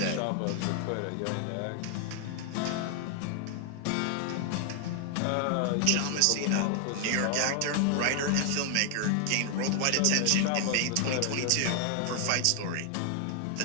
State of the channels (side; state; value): both; different; correlation 0.00